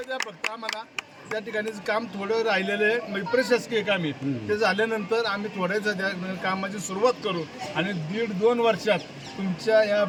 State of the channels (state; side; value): identical; both; correlation 1.00